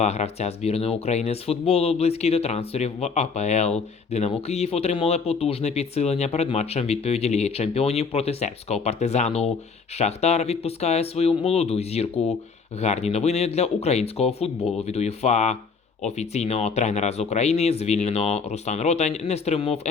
гравця збірної України з футболу близькі до трансферів в АПЛ. Динамо Київ отримали потужне підсилення перед матчем відповіді Ліги Чемпіонів проти сербського партизану. Шахтар відпускає свою молоду зірку. Гарні новини для українського футболу від УЄФА. Офіційного тренера з України звільнено. Руслан Ротань не стримував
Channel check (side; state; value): right; quieter; 5.1 dB